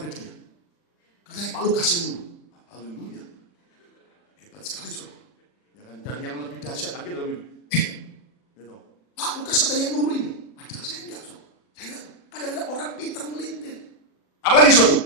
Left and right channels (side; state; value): right; late; 40 ms